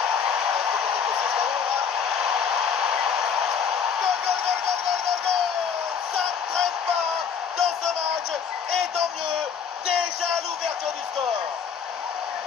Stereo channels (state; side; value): quieter; right; 6.9 dB